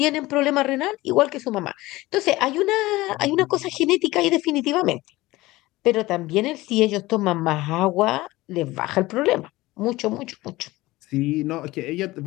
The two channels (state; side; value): quieter; right; 19.1 dB